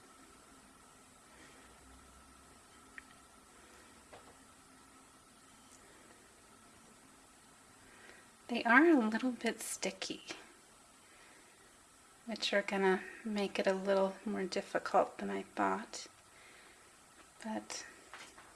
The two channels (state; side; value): identical; both; correlation 1.00